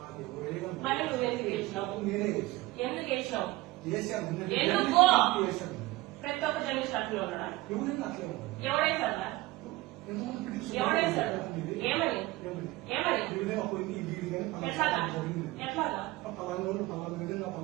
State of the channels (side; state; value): left; quieter; 19.3 dB